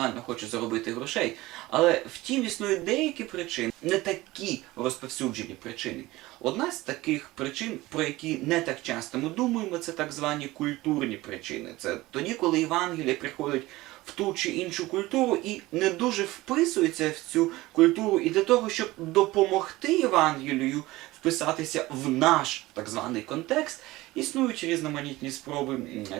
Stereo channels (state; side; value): quieter; left; 18.9 dB